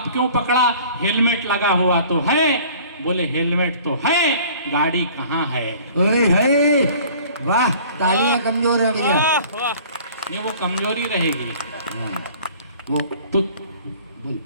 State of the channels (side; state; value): both; inverted; correlation -0.49